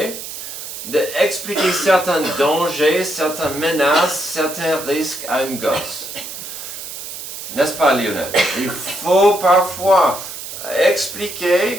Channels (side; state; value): right; noise; hiss, 9 dB below the sound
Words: d'expliquer certains dangers, certaines menaces, certains risques à une gosse. N'est-ce pas, Lionel? Il faut parfois